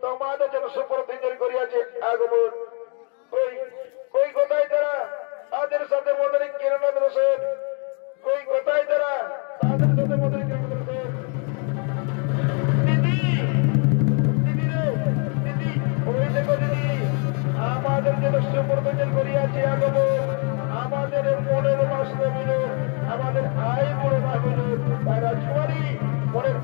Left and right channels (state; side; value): quieter; right; 38.2 dB